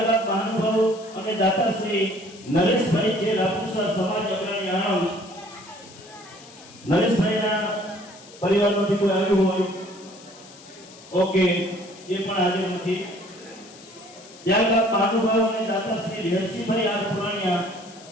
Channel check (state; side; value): noise; left; hiss, 21 dB below the sound